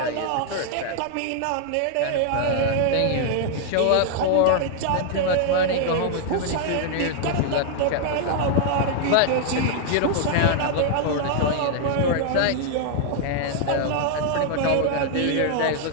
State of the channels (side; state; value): both; different; correlation 0.00